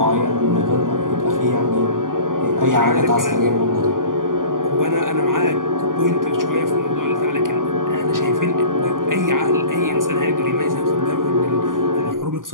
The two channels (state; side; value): late; left; 0.90 ms